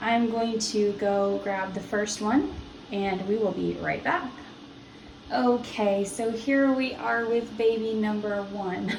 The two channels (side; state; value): both; identical; correlation 1.00